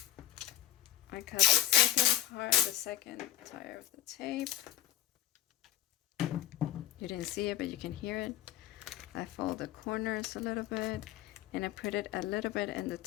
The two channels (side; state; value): right; quieter; 12.3 dB